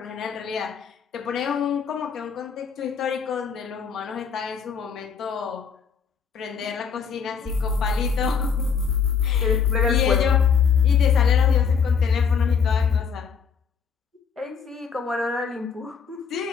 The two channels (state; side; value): quieter; right; 6.4 dB